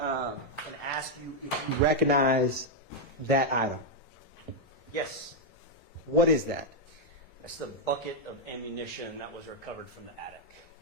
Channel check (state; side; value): normal; both; correlation -0.02